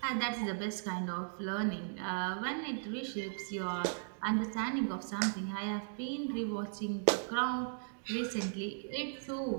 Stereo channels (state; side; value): silent; left; digital silence